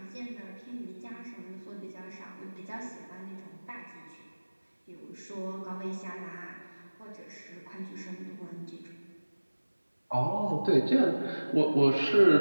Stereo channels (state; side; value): inverted; both; correlation -1.00